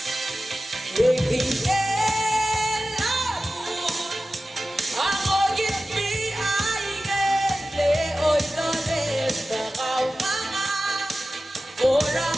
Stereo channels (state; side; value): normal; both; correlation 0.95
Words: Yegin elamu, angogit mi aigen, leoy loles bakaw mga, orang